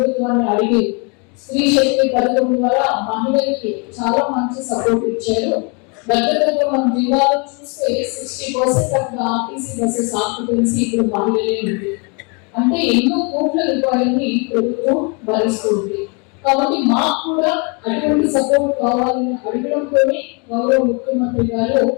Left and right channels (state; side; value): quieter; right; 33.2 dB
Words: అడిగి స్త్రీ శక్తి పథకం ద్వారా మహిళలకి చాలా మంచి సపోర్ట్ ఇచ్చారు. దగ్గర మన జిల్లాలో చూస్తే 60% ఆఫ్ ఆర్టీసీ బస్సెస్ ఆక్యుపెన్సీ ఇప్పుడు మహిళలే ఉంది. అంటే ఎన్నో కోట్ల రూపాయలని ప్రభుత్వం భరిస్తుంది. కాబట్టి మాకు కూడా అటువంటి సపోర్ట్ కావాలని అడగడంతోనే గౌరవ ముఖ్యమంత్రి గారు